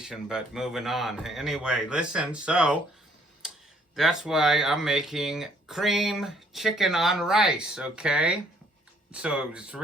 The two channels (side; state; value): both; normal; correlation 0.63